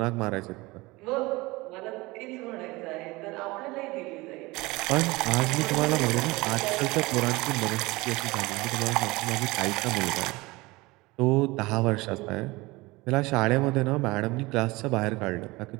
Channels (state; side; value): quieter; left; 22.1 dB